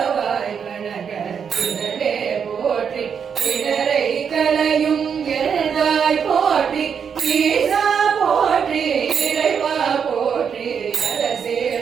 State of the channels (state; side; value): quieter; left; 7.1 dB